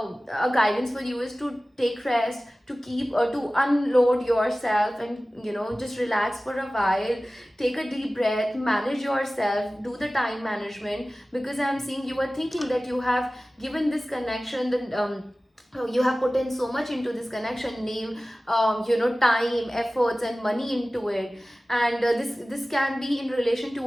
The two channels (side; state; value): both; normal; correlation 0.97